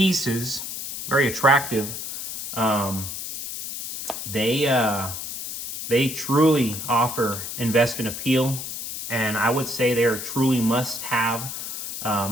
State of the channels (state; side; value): noise; left; hiss, 7 dB below the sound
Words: very attractive, they truly offer investment appeal, and I would say they are truly must-haves